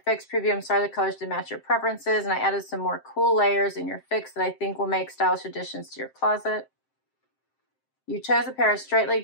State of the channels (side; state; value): right; late; 7.6 ms